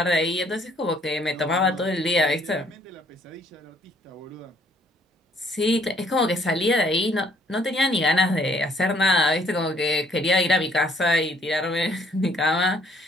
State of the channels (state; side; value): normal; both; correlation 0.63